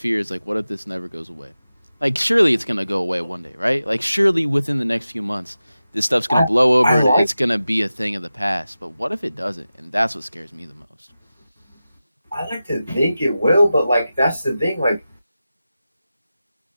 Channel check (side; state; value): both; inverted; correlation -0.94